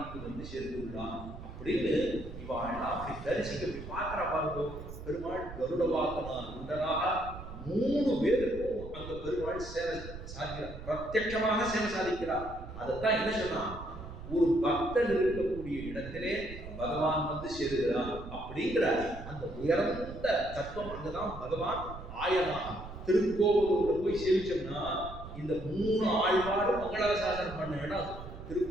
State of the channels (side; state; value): right; noise; rumble, 12 dB below the sound